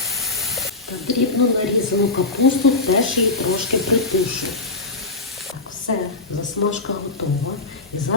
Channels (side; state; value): right; quieter; 3.4 dB